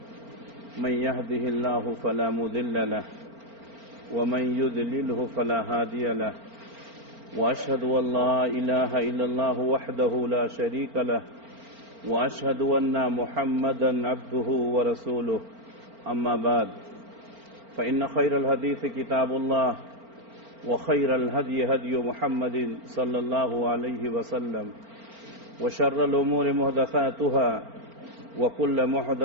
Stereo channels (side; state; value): left; late; 4.4 ms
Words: من يهده الله فلا مضل له ومن يضلله فلا هادي له وأشهد أن لا إله إلا الله وحده لا شريك له وأشهد أن محمدا عبده ورسوله أما بعد فإن خير الحديث كتاب الله وخير الهدي هدي محمد صلى الله عليه وسلم وشر الأمور محدثاتها وكل